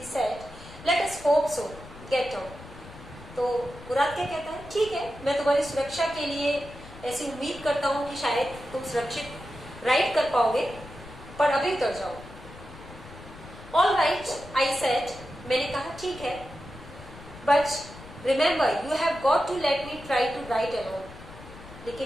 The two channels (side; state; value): left; noise; rumble, 16 dB below the sound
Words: said, let us hope so. Get down. तो मुराद क्या कहता है, ठीक है, मैं तुम्हारी सुरक्षा के लिए ऐसी उम्मीद करता हूँ कि शायद तुम सुरक्षित राइड कर पाओगे, पर अभी उतर जाओ। ऑल राइट, आई सेड, मैंने कहा ठीक है, but remember you have got to let me try to ride alone.